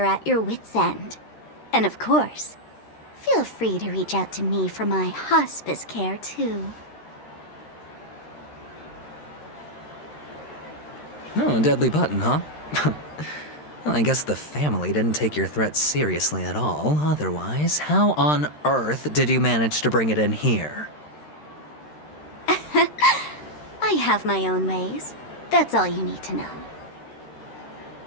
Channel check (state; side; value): late; right; 13 ms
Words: at your wit's end. And of course, feel free to reach out to me for my hospice care, too. Oh, a deadly button, huh? Well, I guess the family didn't take your threat seriously at all. Otherwise, how on earth did you manage to bring it in here? I have my own ways. That's all you need to know.